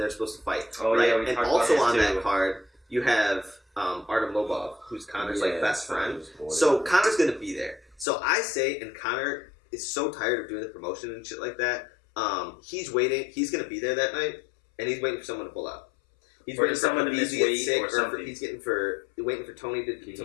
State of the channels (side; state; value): right; drops out; at 8.1 s